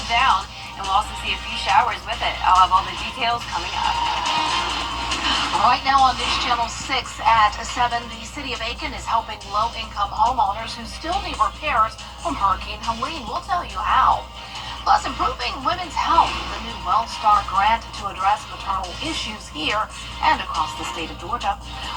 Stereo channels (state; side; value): identical; both; correlation 1.00